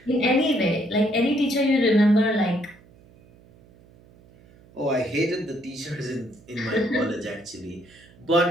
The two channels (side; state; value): right; noise; hum, 26 dB below the sound